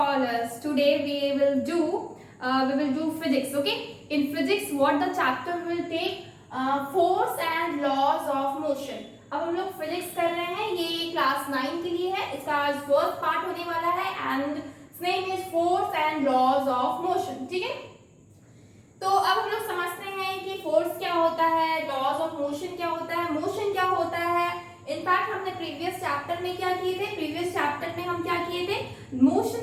Today we will do physics, okay? In physics what the chapter will take force and laws of motion. अब हम लोग physics कर रहे हैं, ये class 9 के लिए है. इसका आज फर्स्ट पार्ट होने वाला है and its name is force and laws of motion. ठीक है, तो अब हम लोग समझते हैं कि फोर्स क्या होता है, लॉज ऑफ मोशन क्या होता है, मोशन क्या होता है. इनफैक्ट हमने प्रीवियस चैप्टर में क्या किए थे, प्रीवियस चैप्टर में हम क्या किए थे,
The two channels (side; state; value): both; identical; correlation 1.00